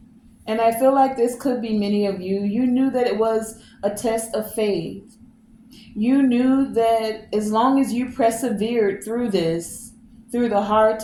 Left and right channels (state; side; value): identical; both; correlation 1.00